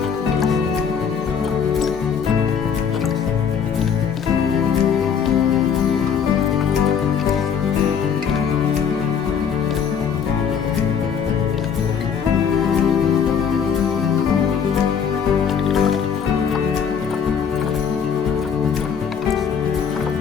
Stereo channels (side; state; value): right; quieter; 7.1 dB